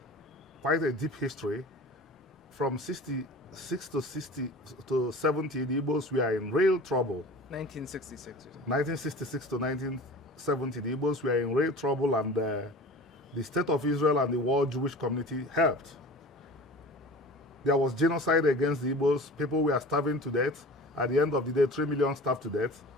quite a deep history. From 66 to 70, the Igbos were in real trouble. 1966. 1966 to 1970, the Igbos were in real trouble, and the State of Israel and the world Jewish community helped. There was genocide against the Igbos. People were starving to death. At the end of the day, 3 million starved to death.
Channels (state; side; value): normal; both; correlation 0.39